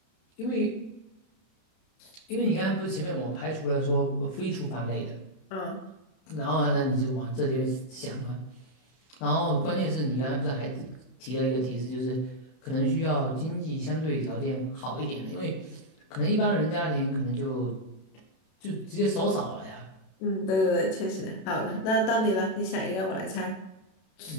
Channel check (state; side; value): late; right; 31 ms